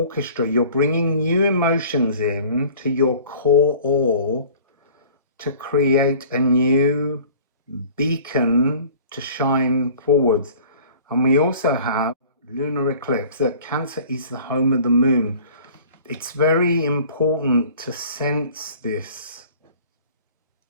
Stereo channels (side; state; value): both; inverted; correlation -0.47